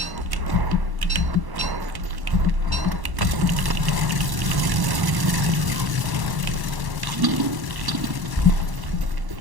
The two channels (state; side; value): late; left; 1.1 ms